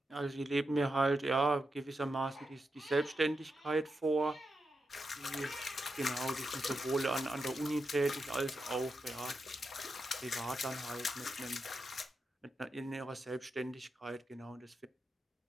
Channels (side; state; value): both; normal; correlation 0.86